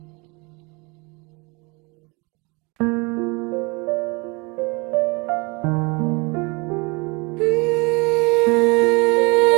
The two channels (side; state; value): left; quieter; 28.2 dB